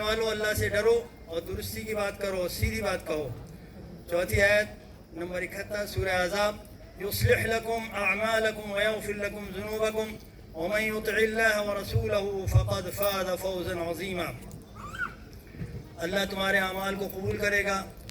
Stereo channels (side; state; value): both; identical; correlation 1.00